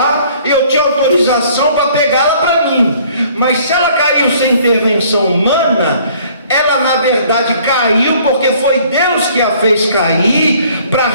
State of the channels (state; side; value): inverted; both; correlation -0.57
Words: eu tinha autorização para pegá-la para mim. Mas se ela caiu sem intervenção humana, ela na verdade caiu porque foi Deus que a fez cair para